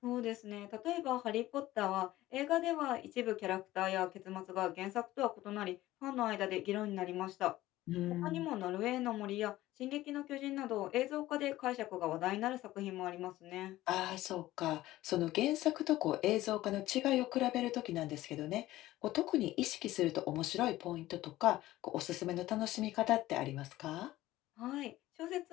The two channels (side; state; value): right; quieter; 16.1 dB